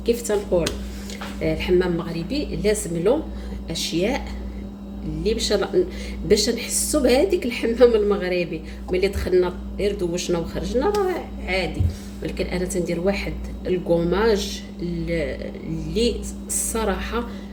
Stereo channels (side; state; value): both; identical; correlation 1.00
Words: كيف تنقول الحمام المغربي لازم له اشياء اللي باش نحسوا بهذيك الحمام المغربي. ملي دخلنا غير دوشنا وخرجنا راه عادي، ولكن انا تندير واحد الكوماج اللي الصراحه